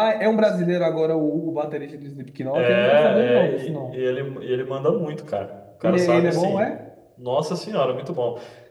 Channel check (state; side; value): identical; both; correlation 1.00